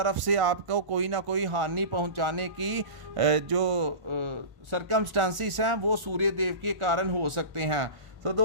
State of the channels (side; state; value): left; late; 1.0 ms